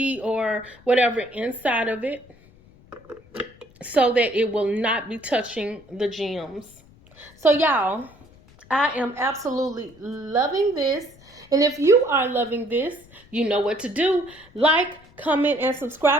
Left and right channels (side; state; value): left; noise; rumble, 26 dB below the sound